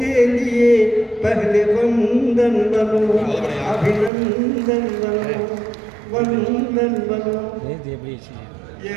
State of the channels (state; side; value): drops out; left; at 4.1 s